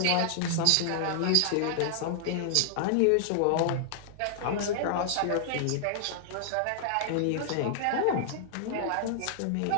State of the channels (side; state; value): both; different; correlation -0.01